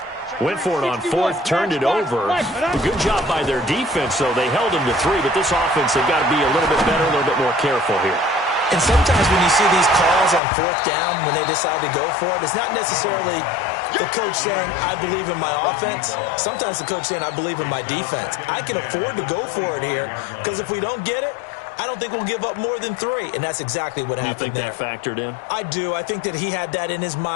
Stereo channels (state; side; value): drops out; right; at 10.4 s